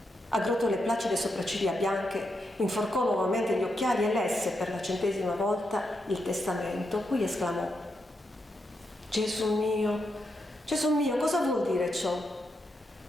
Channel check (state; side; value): normal; both; correlation 0.84